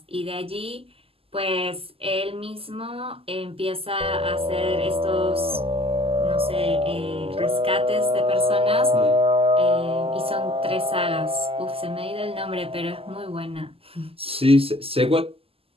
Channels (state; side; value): late; left; 0.28 ms